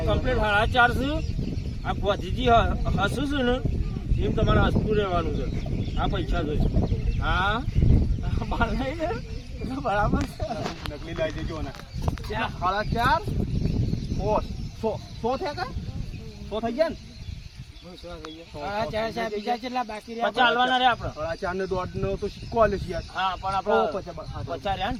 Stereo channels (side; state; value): both; identical; correlation 1.00